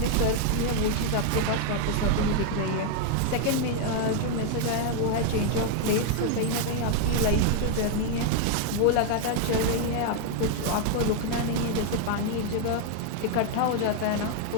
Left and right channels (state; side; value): different; both; correlation 0.01